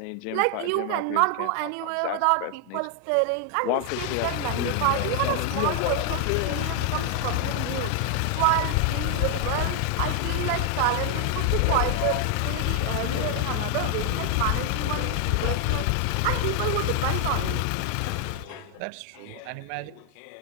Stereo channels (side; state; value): both; different; correlation 0.00